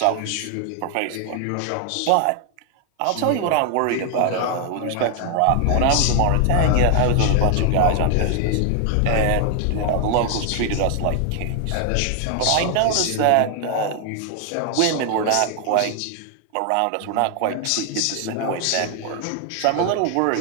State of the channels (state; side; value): different; both; correlation 0.00